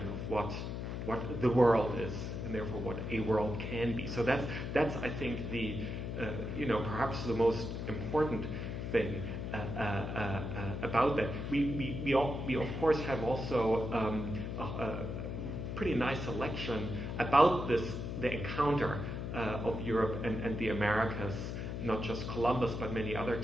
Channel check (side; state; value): left; noise; hum, 4 dB below the sound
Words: of what the world is, and therefore what a world can be. So that's I think the perhaps the most important thing about that. We of course have also a pretty nice selection about the encounter of Europe and the Americas. Not just Columbus, but many other